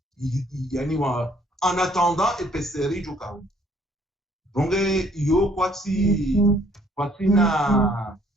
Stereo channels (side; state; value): both; normal; correlation 0.62